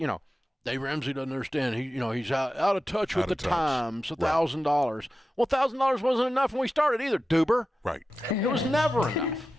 Dave Ramsey doesn't understand. He's out of touch with the times. $1,000. Well, $1,000 wasn't enough when we started either, Duber. Right. It was never enough.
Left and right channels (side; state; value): both; normal; correlation 0.93